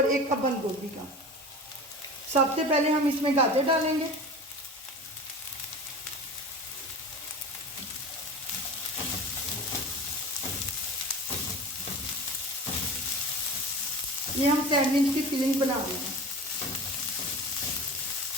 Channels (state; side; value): normal; both; correlation 0.34